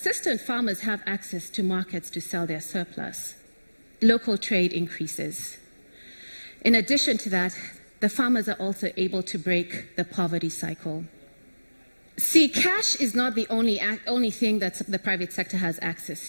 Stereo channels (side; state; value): both; inverted; correlation -1.00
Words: farmers have access to markets to sell their surplus, local trade increases. In addition to that, the farmers are also able to break the poverty cycle. See, cash is not the only thing that the private sector has